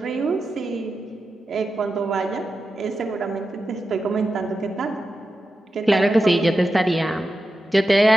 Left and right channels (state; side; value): normal; both; correlation 0.91